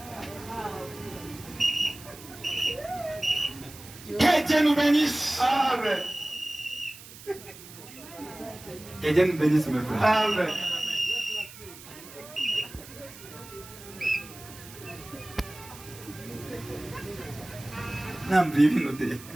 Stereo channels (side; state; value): right; noise; hiss, 17 dB below the sound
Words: Que Dieu nous bénisse. Amen. Que Dieu nous bénisse, mes frères. Amen.